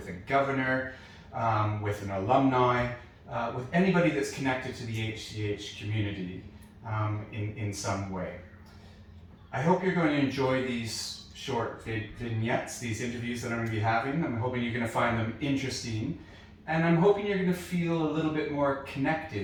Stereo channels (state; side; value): identical; both; correlation 1.00